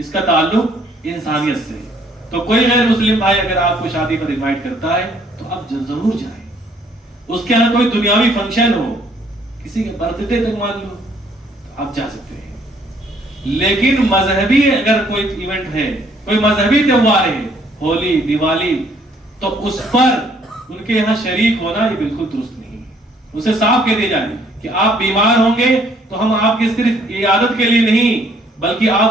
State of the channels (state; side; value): normal; both; correlation 0.63